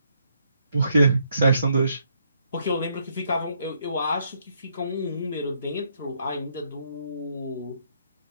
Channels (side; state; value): both; inverted; correlation -0.73